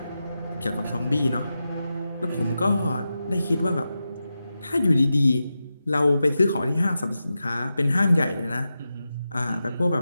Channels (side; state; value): both; inverted; correlation -0.91